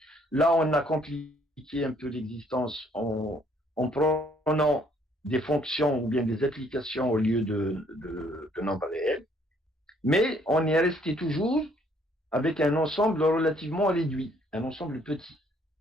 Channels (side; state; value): both; normal; correlation 0.64